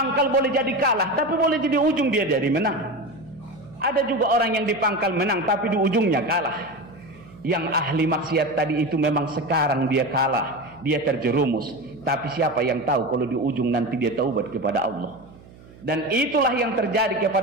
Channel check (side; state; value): right; noise; hum, 22 dB below the sound